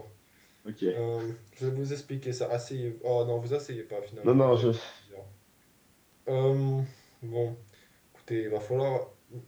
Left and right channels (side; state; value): both; identical; correlation 1.00